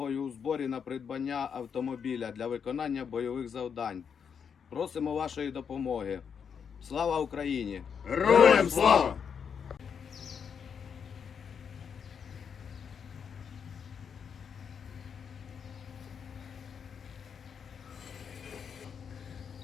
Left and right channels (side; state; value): right; quieter; 7.0 dB